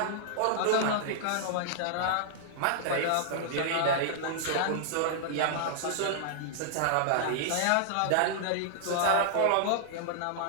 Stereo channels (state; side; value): different; both; correlation -0.01